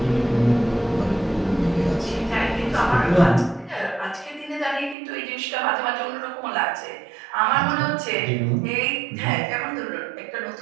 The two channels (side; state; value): left; drops out; at 5.0 s